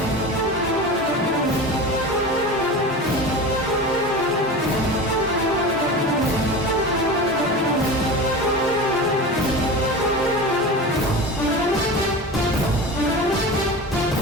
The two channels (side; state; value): both; normal; correlation 0.30